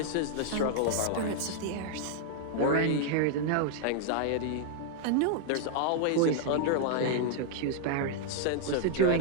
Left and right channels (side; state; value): both; different; correlation -0.01